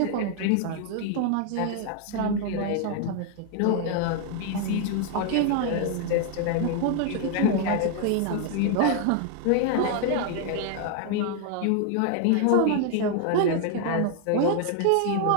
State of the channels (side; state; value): both; different; correlation 0.00